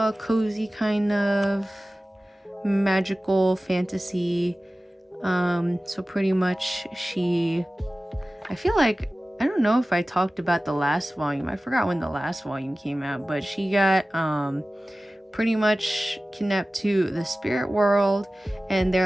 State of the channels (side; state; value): both; normal; correlation 0.97